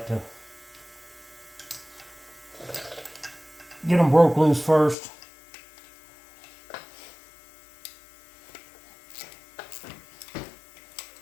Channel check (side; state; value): right; drops out; at 5.0 s